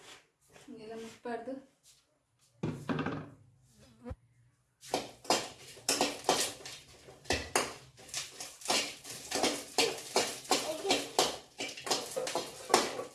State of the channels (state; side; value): identical; both; correlation 1.00